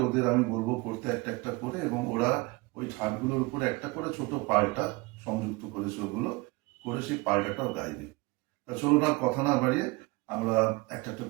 ওদের আমি বলবো করতে একটা একটা করে, এবং ওরা ওই ঠাটগুলোর উপরে একটা করে ছোট পাল্টা সংযুক্ত করেছে, ওগুলো করে সেই পাল্টাটাও গাইবে। তা চলুন আর কথা না বাড়িয়ে আমরা একটা একটা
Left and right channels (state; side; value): quieter; left; 24.7 dB